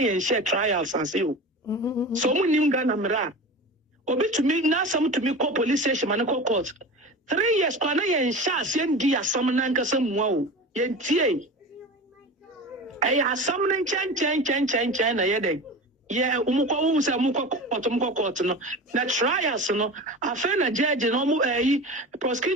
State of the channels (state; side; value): normal; both; correlation 0.31